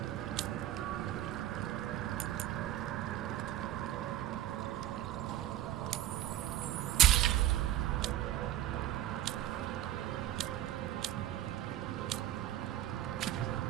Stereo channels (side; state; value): left; quieter; 13.2 dB